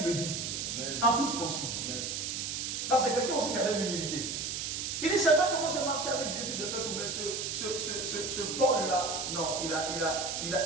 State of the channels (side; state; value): right; noise; hiss, 3 dB below the sound